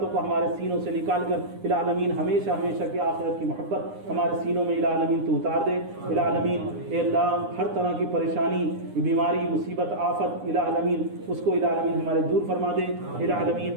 کو ہمارے سینوں سے نکال کر الہ العالمین ہمیشہ ہمیشہ کی آخرت کی محبت ہمارے سینوں میں الہ العالمین تو اتار دے۔ الہ العالمین اے اللہ ہر طرح کی پریشانی، بیماری، مصیبت، آفت الہ العالمین اس کو الہ العالمین ہمارے دور فرما دے۔ الہ العالمین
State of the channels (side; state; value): left; late; 9.8 ms